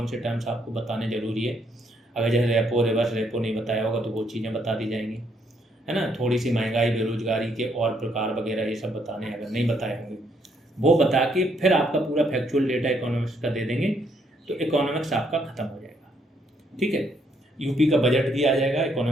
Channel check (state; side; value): normal; both; correlation 0.72